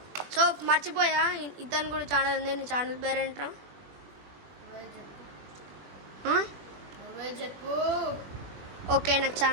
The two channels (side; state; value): left; late; 21 ms